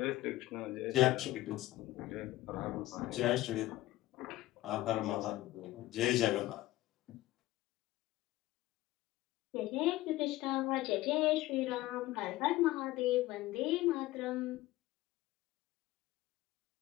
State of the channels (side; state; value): right; quieter; 17.1 dB